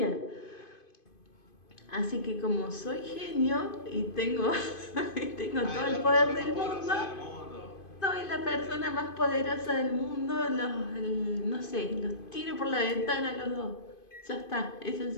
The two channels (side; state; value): right; late; 2.5 ms